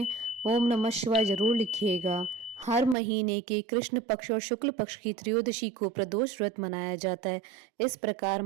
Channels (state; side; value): drops out; left; at 3.0 s